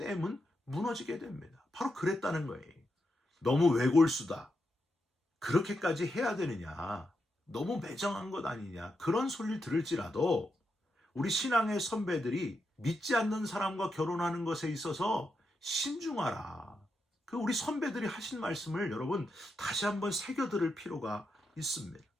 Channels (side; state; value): both; normal; correlation 0.84